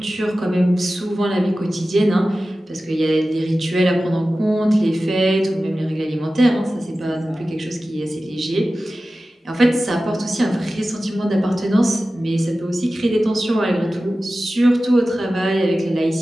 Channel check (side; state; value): both; normal; correlation 0.95